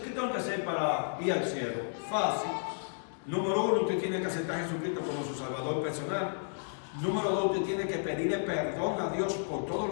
tengo que hacer para ir al cielo? Fácil. Número 1, usted tiene que aceptar a Jesucristo como su Salvador personal. Número 2, usted tiene que pedirle perdón a Dios por todo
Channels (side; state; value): right; silent; digital silence